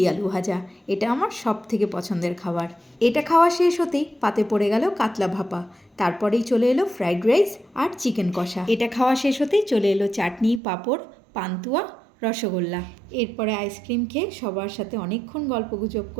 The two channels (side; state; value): left; drops out; at 10.6 s